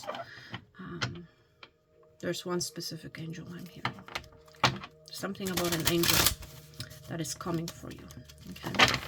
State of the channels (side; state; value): both; identical; correlation 1.00